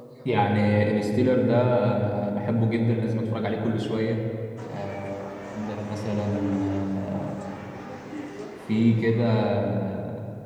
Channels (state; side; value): identical; both; correlation 1.00